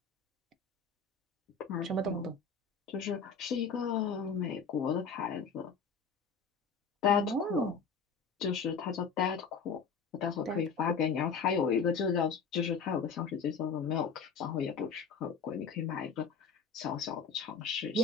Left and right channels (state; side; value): quieter; right; 5.5 dB